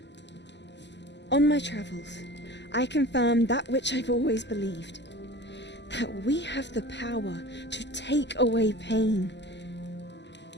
On my travels, I confirmed that which I've always believed. That we have the power to take away pain.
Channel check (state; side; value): late; right; 0.51 ms